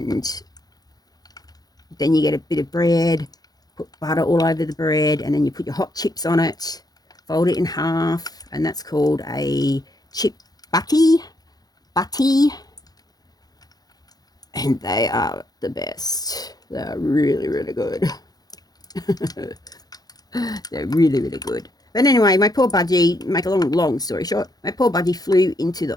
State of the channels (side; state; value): right; late; 0.19 ms